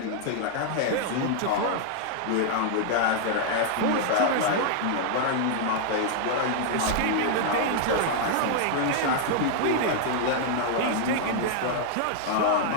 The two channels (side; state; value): both; different; correlation 0.00